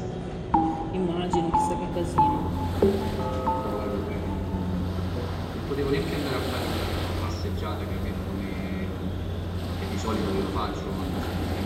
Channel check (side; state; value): both; identical; correlation 1.00